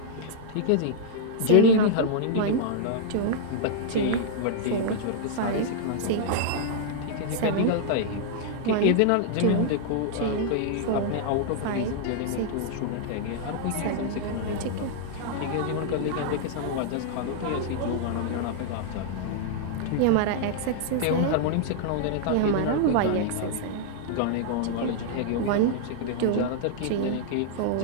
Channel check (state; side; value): different; both; correlation -0.01